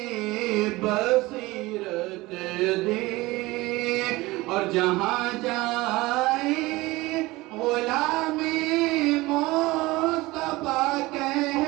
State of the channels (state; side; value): quieter; left; 20.6 dB